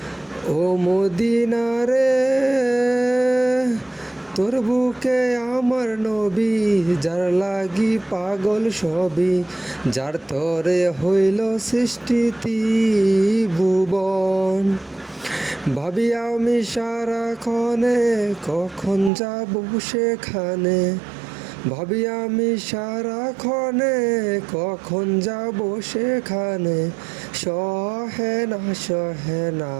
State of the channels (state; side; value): drops out; left; at 19.1 s